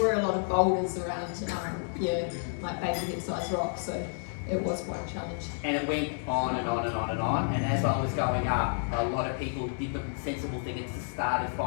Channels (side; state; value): right; silent; 58 dB below the other